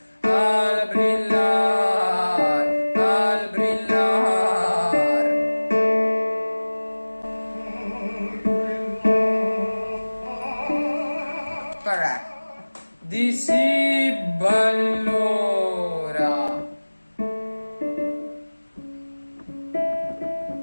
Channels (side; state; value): both; inverted; correlation -1.00